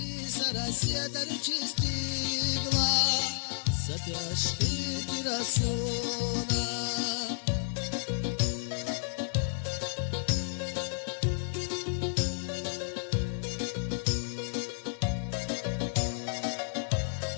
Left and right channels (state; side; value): silent; right; 57 dB below the other